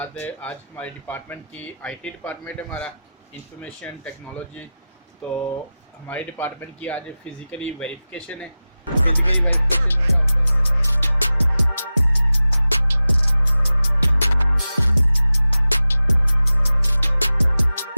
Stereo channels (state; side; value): inverted; both; correlation -0.94